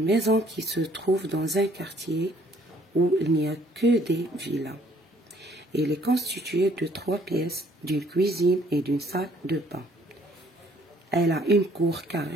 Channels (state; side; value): normal; both; correlation 0.62